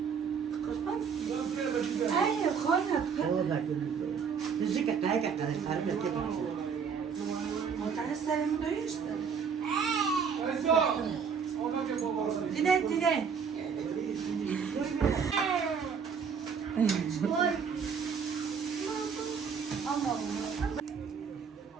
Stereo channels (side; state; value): left; quieter; 6.4 dB